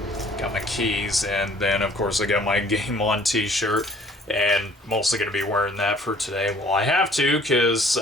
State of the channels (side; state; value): both; normal; correlation 0.56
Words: got my keys, and then of course I got my Game On t-shirt, and mostly going to be wearing that for today. Well, I have to, because